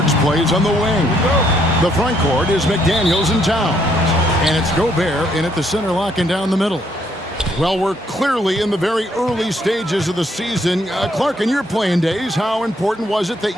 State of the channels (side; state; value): both; normal; correlation 0.70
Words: plays on the wing. The front court is McDaniels and Towns. And it's Gobert in at the center, locking down the middle. Well, we're clearly in the very early stages of the season. Clark, in your playing days, how important was it